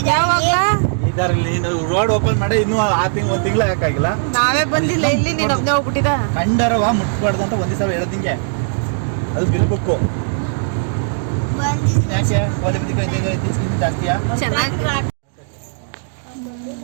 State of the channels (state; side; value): silent; left; digital silence